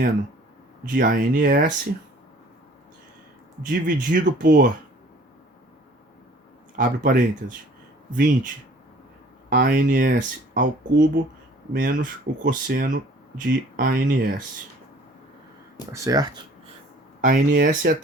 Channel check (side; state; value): both; normal; correlation 0.52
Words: de ANS dividido por, abre parênteses, 20 ANS ao cubo menos o cosseno de ANS. Tá certo? ANS é a